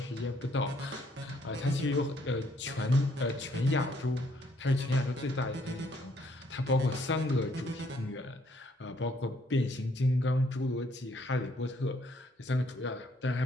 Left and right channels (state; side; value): normal; both; correlation 0.67